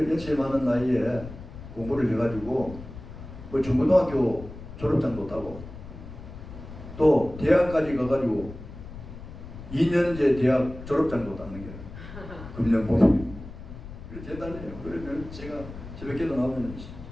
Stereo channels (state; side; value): noise; left; rumble, 13 dB below the sound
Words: 연세 많은 나이에 공부를 해가지고 뭐 중고등학교 졸업장도 따고 또 대학까지 가가지고 2년제 대학 졸업장도 따는 게 금년봉 대단해요. 그러면 제가 새벽기도 나오면